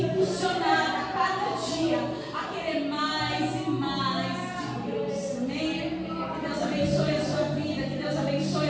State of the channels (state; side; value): identical; both; correlation 1.00